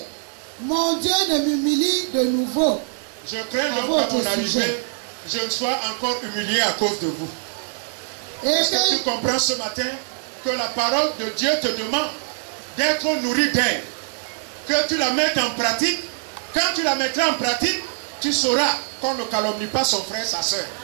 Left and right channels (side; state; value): left; silent; 63 dB below the other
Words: mon Dieu ne m'humilie de nouveau. Je crains donc qu'à mon arrivée, je ne sois encore humilié à cause de vous. Est-ce que tu comprends ce matin que la parole de Dieu te demande d'être nourri d'elle, que tu la mettes en pratique? Quand tu la mettras en pratique, tu sauras qu'on ne calomnie pas son frère, sa soeur.